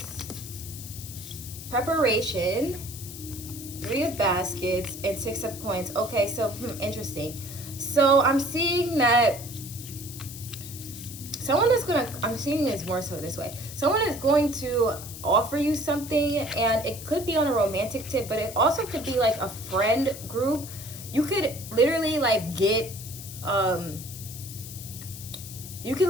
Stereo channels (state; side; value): noise; left; hiss, 12 dB below the sound